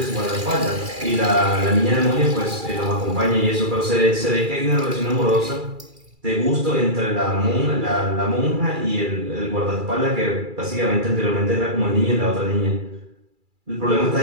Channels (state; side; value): late; left; 2.3 ms